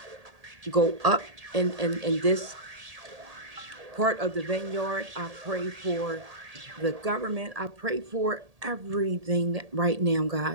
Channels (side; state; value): left; late; 1.8 ms